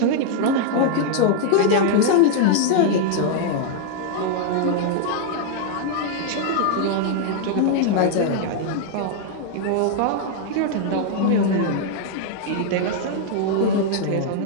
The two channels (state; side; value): different; both; correlation 0.00